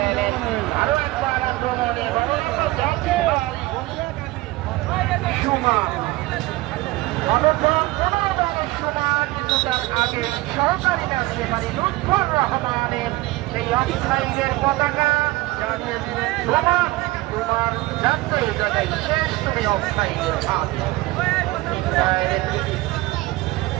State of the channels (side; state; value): left; quieter; 19.7 dB